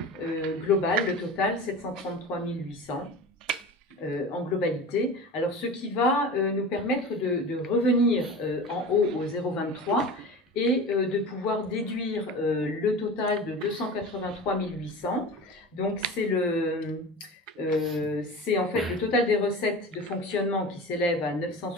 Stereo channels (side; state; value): both; normal; correlation 0.33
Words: globales, le total, 733 800 en globalité. Alors, ce qui va nous permettre de revenir en haut au 0,23 et de pouvoir déduire le total de 283 800. Donc, c'est en fait le total des recettes de fonctionnement qui s'élève à